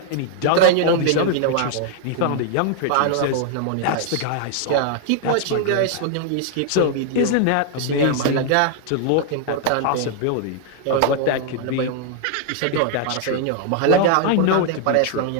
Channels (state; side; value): different; both; correlation 0.00